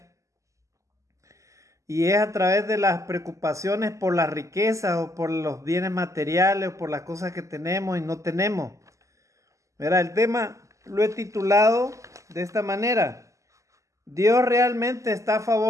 y es a través de las preocupaciones por la riqueza o por los bienes materiales o por las cosas que tenemos y no tenemos. Mira, el tema lo he titulado de esta manera: ¿Dios realmente está a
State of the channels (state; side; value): late; left; 0.16 ms